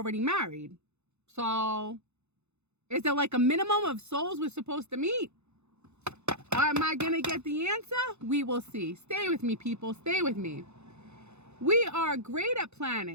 married. So is there like a minimum of souls we're supposed to meet? Am I going to get the answer? We will see. Stay with me, people. Stay with me. We are great at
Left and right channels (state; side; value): late; left; 0.81 ms